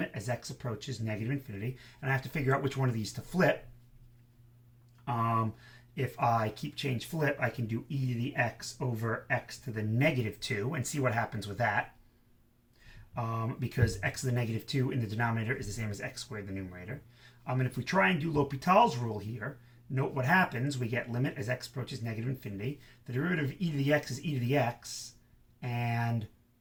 as x approaches negative infinity, and I have to figure out which one of these to flip. If I keep change flip, I can do e to the x over x to the negative 2 and see what happens with that. Because x to the negative 2 in the denominator is the same as x squared in the numerator. And if we try and do L'Hopital's rule here, note what happens. We get limit as x approaches negative infinity. The derivative of e to the x is e to the x, and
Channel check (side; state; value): both; identical; correlation 1.00